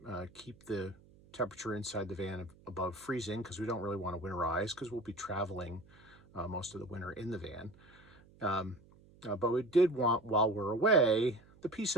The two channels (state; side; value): noise; right; hum, 26 dB below the sound